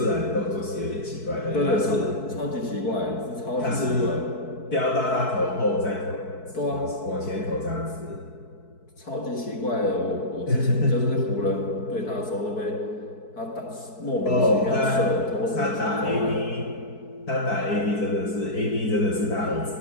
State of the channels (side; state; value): right; late; 4.6 ms